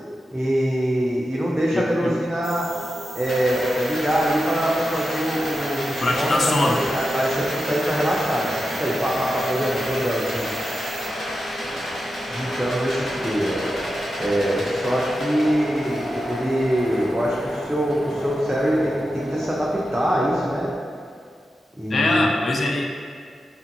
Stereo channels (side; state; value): both; normal; correlation 0.90